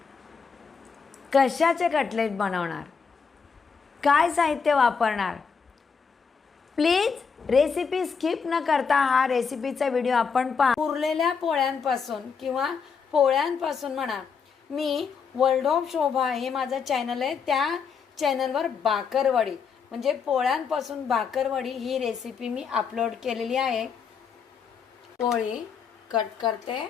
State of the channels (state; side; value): quieter; right; 5.9 dB